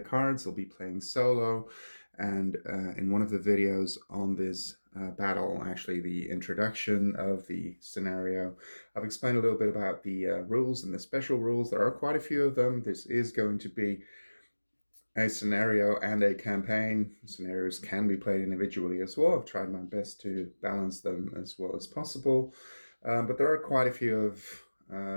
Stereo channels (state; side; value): inverted; both; correlation -1.00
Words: I'll be playing solo, and in one of the videos on this battle, actually the introduction of the scenario, I've explained a little bit about the rules and the special rules. There are quite a few of them. This is going to be a scenario and a campaign. Scenarios can be played individually as well. I've tried my best to balance them as well as possible, but there are quite a few of